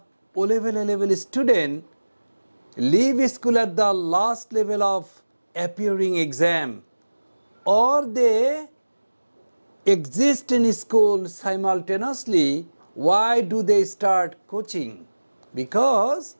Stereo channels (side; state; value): both; inverted; correlation -1.00